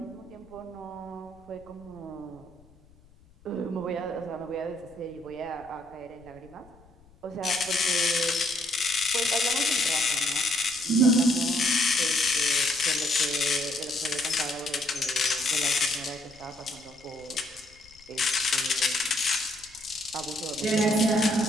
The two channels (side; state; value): left; noise; rumble, 26 dB below the sound